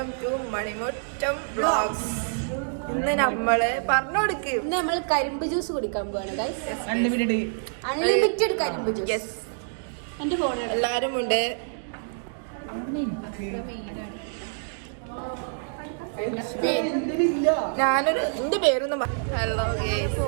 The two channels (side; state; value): left; silent; digital silence